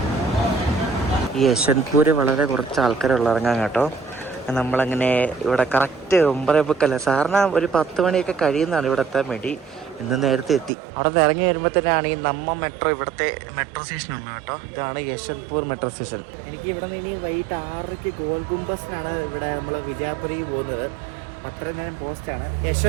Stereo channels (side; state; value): left; drops out; at 10.7 s